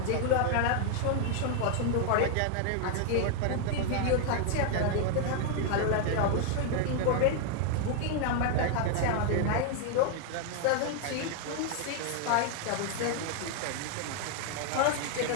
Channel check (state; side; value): different; both; correlation 0.00